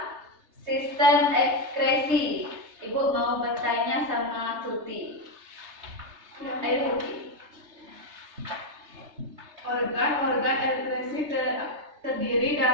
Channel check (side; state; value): left; late; 3.3 ms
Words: sistem ekskresi? Ibu mau bertanya sama Tuti. Ayo Tuti. Organ-organ ekskresi terdiri